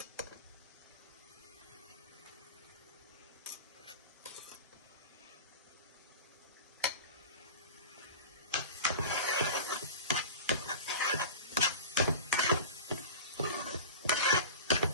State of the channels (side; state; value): both; inverted; correlation -0.33